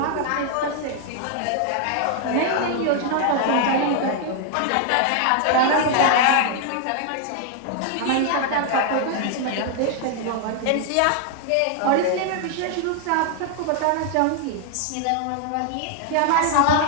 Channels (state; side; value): different; both; correlation 0.00